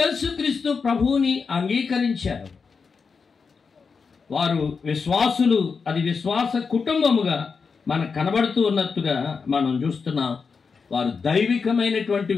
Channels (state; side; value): quieter; right; 5.3 dB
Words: యేసుక్రీస్తు ప్రభువుని అంగీకరించారు. వారు విశ్వాసులు, అది విశ్వాస కుటుంబముగా మనకు కనబడుతూ ఉన్నట్టుగా మనం చూస్తున్నాం. వారు దైవికమైనటువంటి